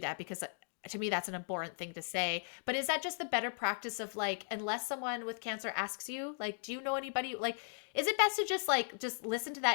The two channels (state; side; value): silent; right; digital silence